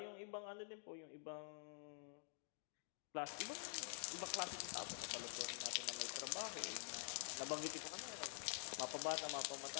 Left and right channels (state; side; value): silent; right; digital silence